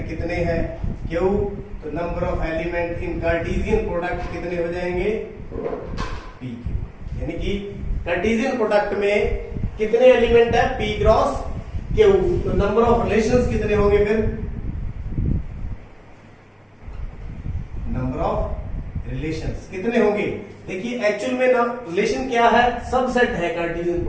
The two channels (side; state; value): both; identical; correlation 1.00